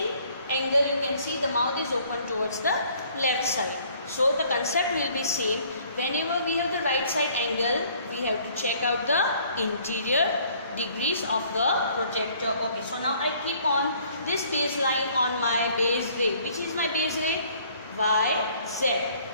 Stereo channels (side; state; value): both; inverted; correlation -0.59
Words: angle you can see the mouth is open towards the left side. So the concept will be same. Whenever we have the right side angle, we have to check out the interior degrees of the protector. Okay, so now I keep on this baseline on my base ray. Which is my base ray? Y, Z.